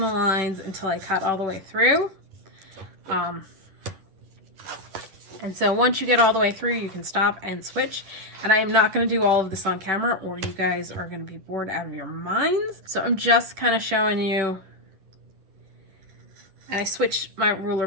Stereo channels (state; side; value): late; left; 10 ms